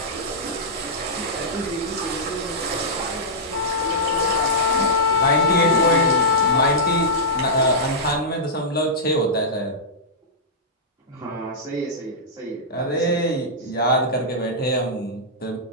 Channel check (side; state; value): both; normal; correlation -0.13